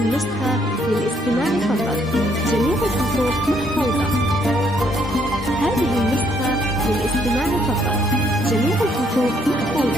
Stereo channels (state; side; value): normal; both; correlation 0.69